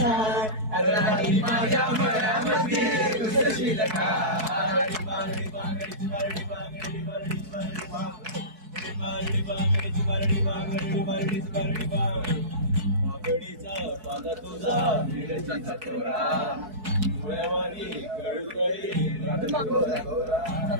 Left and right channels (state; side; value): late; left; 4.6 ms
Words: माझ्या मळ्यामध्ये घुसशील का बागडीचा पाला तुझा मिरचीचा तोरा डोळ्यावानी गळगळी